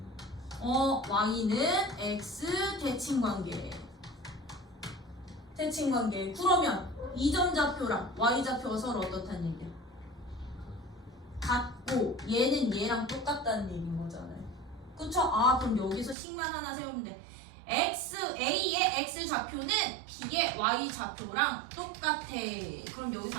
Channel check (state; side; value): drops out; left; at 16.2 s